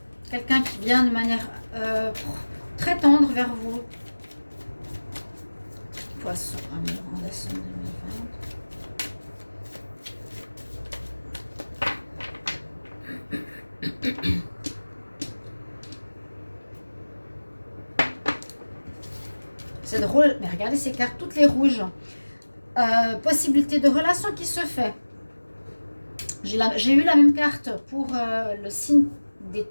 Quelqu'un qui vient de manière très tendre vers vous. Poisson, amour en décembre 2020. C'est drôle, mais regardez ces cartes, toutes les rouges. Possibilité de relation qui se fait. J'ai eu la même carte pour le signe des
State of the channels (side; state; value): both; inverted; correlation -1.00